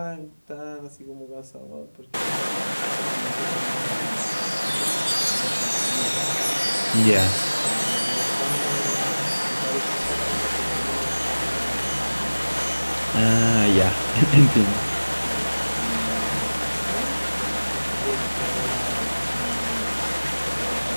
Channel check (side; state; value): both; inverted; correlation -1.00